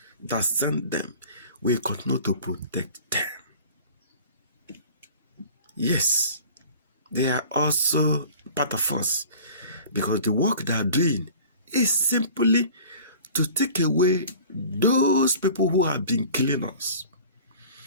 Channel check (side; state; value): both; inverted; correlation -0.44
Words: that sent them will continue to protect them. Yes, they are also part of us because the work they are doing is simply to take away those people who have been killing us.